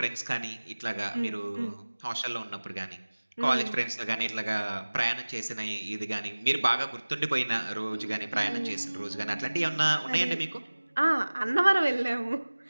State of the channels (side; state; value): both; inverted; correlation -1.00